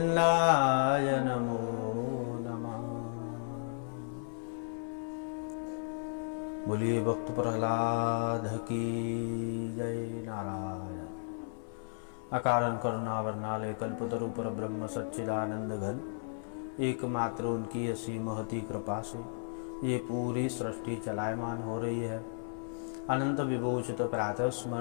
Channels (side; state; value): right; silent; 55 dB below the other